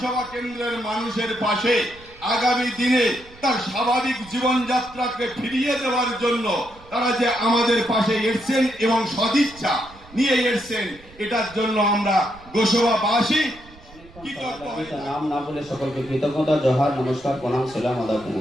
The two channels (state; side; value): noise; right; rumble, 23 dB below the sound